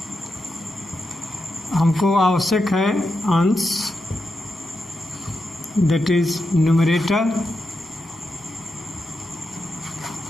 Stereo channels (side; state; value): both; normal; correlation 0.87